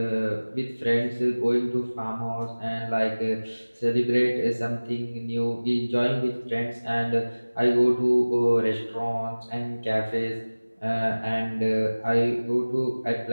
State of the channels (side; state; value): both; inverted; correlation -1.00